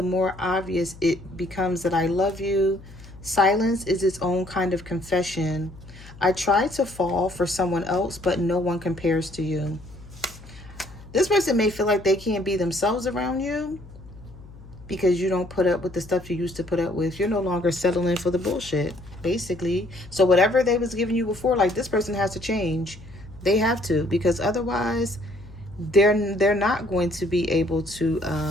more obvious it becomes that I love you. Silence is its own kind of confession. I try to fall for someone else, but no one compares to you. This person may feel like they can't be themselves around you because you don't put up with the stuff you used to put up with. You're no longer settling for the bullshit, basically. So whatever they was giving you before, like this person has to change. They have to, because otherwise they're not going to be able to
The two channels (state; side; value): noise; left; hum, 19 dB below the sound